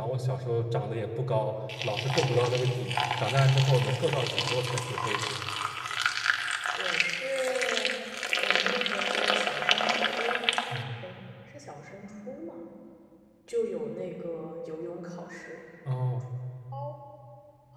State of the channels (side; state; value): both; identical; correlation 1.00